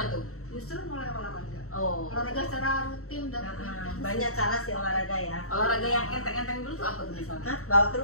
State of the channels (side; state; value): right; late; 0.64 ms